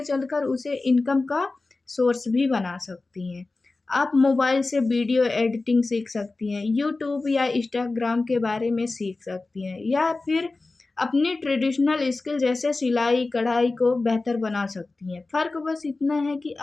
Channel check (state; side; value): quieter; right; 3.4 dB